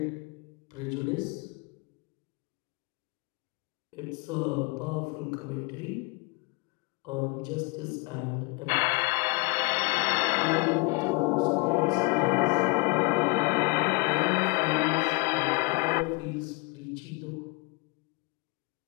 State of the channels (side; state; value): right; quieter; 28.0 dB